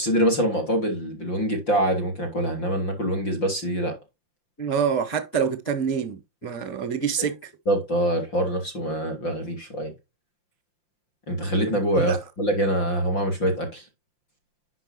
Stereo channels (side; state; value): right; late; 5.8 ms